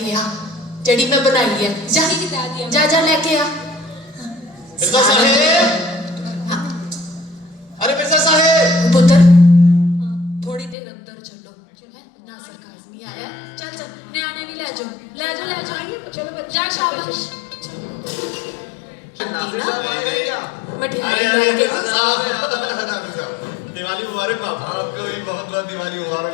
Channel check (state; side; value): drops out; right; at 10.8 s